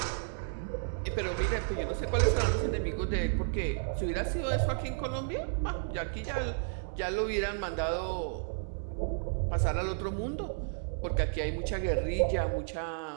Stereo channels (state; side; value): silent; left; digital silence